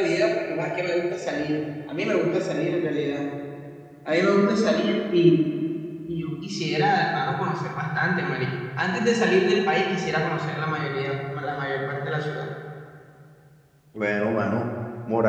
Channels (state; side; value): identical; both; correlation 1.00